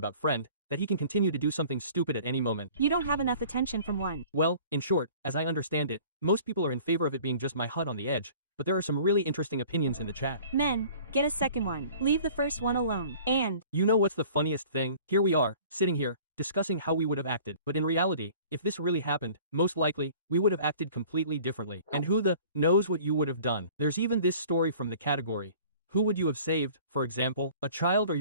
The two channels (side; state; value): both; inverted; correlation -0.48